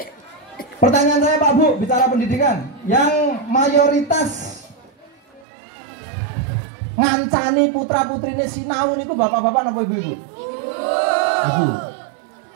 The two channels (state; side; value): drops out; left; at 5.5 s